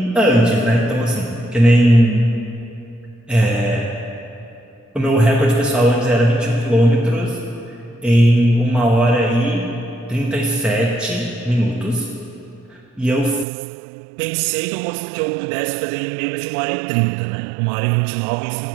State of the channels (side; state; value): left; drops out; at 13.5 s